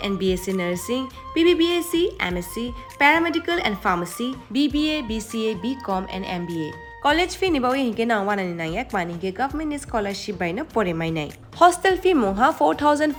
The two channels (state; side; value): identical; both; correlation 1.00